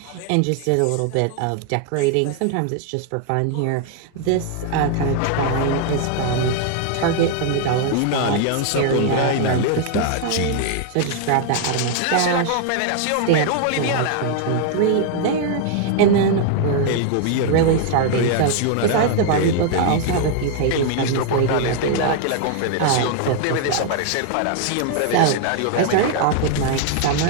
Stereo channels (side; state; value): both; different; correlation 0.00